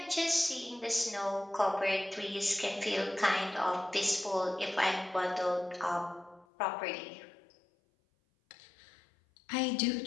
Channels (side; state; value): right; drops out; at 6.5 s